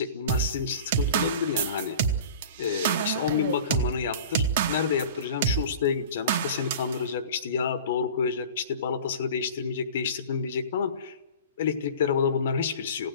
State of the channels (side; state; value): both; inverted; correlation -0.39